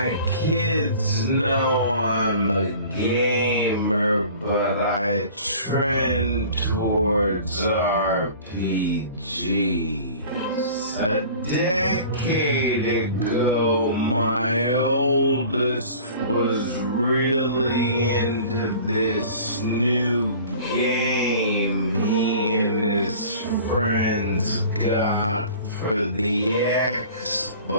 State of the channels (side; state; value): both; inverted; correlation -0.44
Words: kids know I'm a gamer, but I trend towards RPGs. A decade ago, my oldest was really into this new game he and his friends got for the